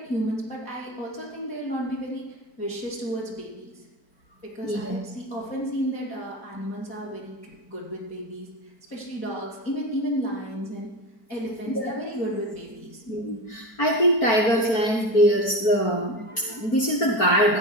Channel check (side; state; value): right; late; 4.5 ms